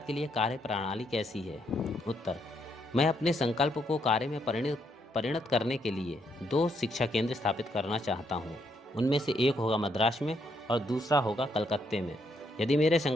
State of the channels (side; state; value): both; normal; correlation 0.75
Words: के लिए कार्य प्रणाली कैसी है? उत्तर: मैं अपने संकल्प को कार्य में परिणत करने के लिए 2 शिक्षा केंद्र स्थापित करना चाहता हूँ। उनमें से एक होगा मद्रास में और दूसरा होगा कलकत्ते में। यदि मेरे